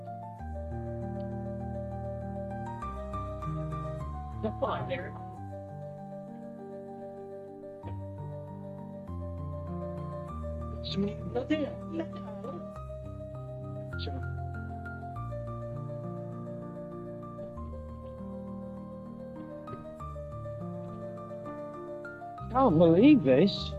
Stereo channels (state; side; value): identical; both; correlation 1.00